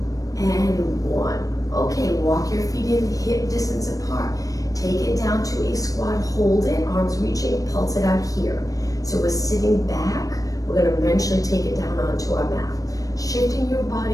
and 1. Okay, walk your feet in hip distance apart. Take it down to a squat, hold it, arms reaching, pulse it out here. So we're sitting back, we're gonna eventually take it down onto our mat. Shifting your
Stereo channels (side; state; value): right; late; 0.17 ms